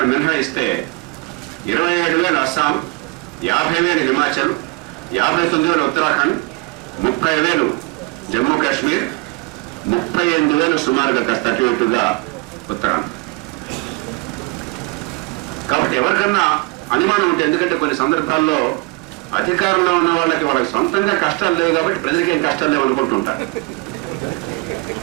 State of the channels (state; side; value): quieter; left; 25.1 dB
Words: మినహాయిస్తే 27,000 అస్సాం, 50,000 హిమాచల్, 59,000 ఉత్తరాఖండ్, 30,000 జమ్మూ కాశ్మీర్, 38,000 సుమారుగా కాస్త అటు ఇటుగా ఉత్తరాంధ్ర. కాబట్టి ఎవరికన్నా అనుమానం ఉంటే, ఎందుకంటే కొన్ని సందర్భాల్లో అధికారంలో ఉన్న వాళ్ళకి సొంతంగా కష్టాలు లేవు కాబట్టి ప్రజలకి ఏం కష్టాలు లేవు అనుకుంటుంటారు.